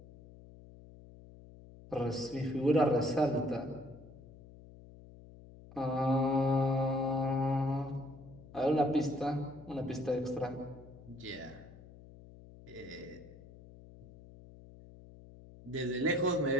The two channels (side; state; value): left; noise; hum, 19 dB below the sound